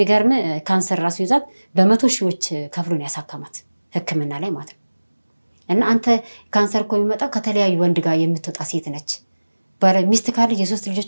ካንሰር ራሱ ይዛት በመቶ ሺዎች ከፍሎን ያሳከማት ሕክምና ላይ ማለት ነው። እና አንተ ካንሰር እኮ የሚመጣው ከተለያዩ ወንድ ጋር የምትወጣ ሴት ነች። ሚስት ካለ የ3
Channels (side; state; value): both; inverted; correlation -1.00